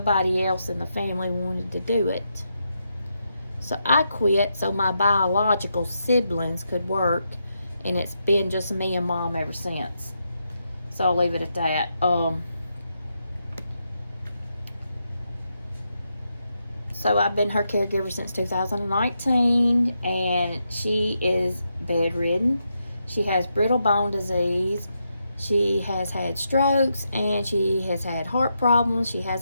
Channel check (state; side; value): inverted; both; correlation -0.83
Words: else in the family wanted to do it. So I quit so my biological siblings could work, and it's been just me and Mom ever since. So I'll leave it at that. So I've been her caregiver since 2019, and she is bedridden. She has brittle bone disease. She has had strokes, and she has had heart problems. She